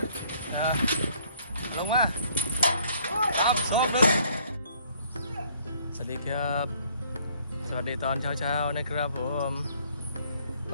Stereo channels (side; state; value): both; inverted; correlation -0.62